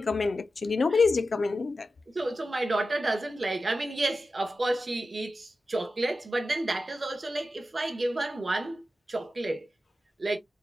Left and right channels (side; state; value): both; normal; correlation 0.92